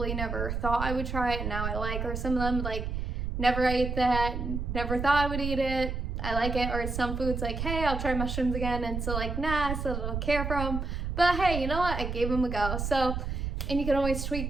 never thought I would try and now I like, or some of them, like, never ate that, never thought I would eat it, I like it, or some foods like, hey, I'll try mushrooms again, and so like, nah, I still don't care for them, but hey, you know what, I gave them a go. So, and you can always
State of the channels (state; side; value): noise; right; rumble, 3 dB below the sound